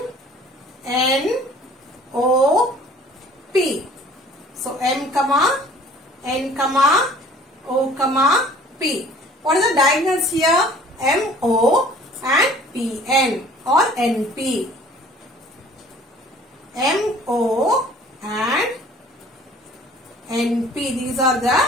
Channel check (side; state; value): both; normal; correlation 0.51